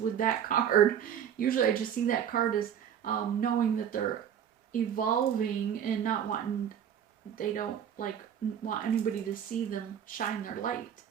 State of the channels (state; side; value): quieter; left; 9.0 dB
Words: that card. Usually I just see that card as knowing that they're evolving and not wanting, they don't want anybody to see them shine their light.